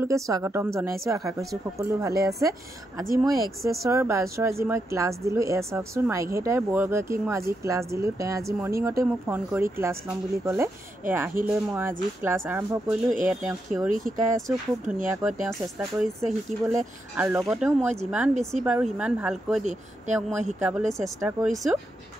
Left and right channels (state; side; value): normal; both; correlation 0.83